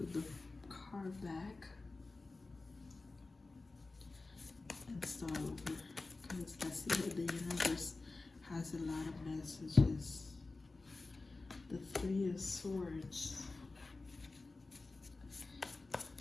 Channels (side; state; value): right; quieter; 3.5 dB